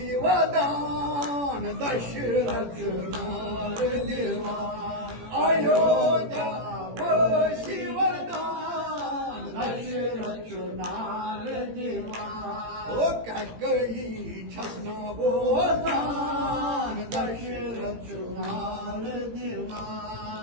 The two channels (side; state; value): left; late; 18 ms